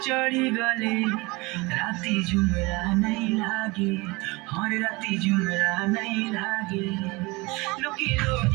চढ़ी गले राती झुमरा नहीं लागे हर राती झुमरा नहीं लागे लुकी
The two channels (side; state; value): left; quieter; 24.4 dB